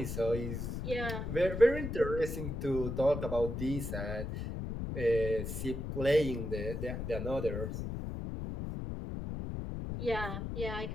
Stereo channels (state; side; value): noise; left; rumble, 4 dB below the sound